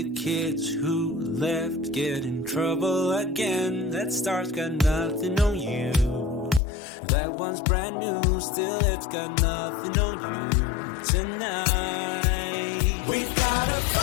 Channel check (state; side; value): drops out; right; at 6.6 s